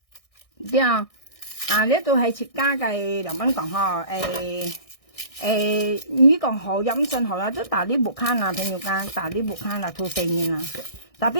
對啊呢度係設家嘅梁斌講呵你講好飲信好啦，都大啲木坑啊，朋友間大啲木坑啦，吐4年啦。特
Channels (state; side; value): late; right; 1.6 ms